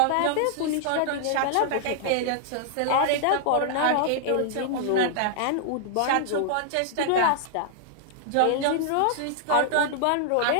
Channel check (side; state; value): both; different; correlation -0.01